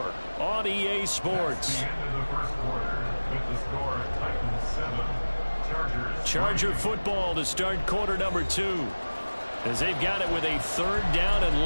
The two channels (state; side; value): inverted; both; correlation -1.00